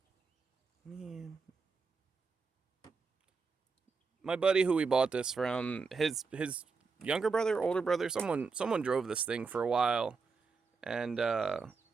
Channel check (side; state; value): left; quieter; 4.7 dB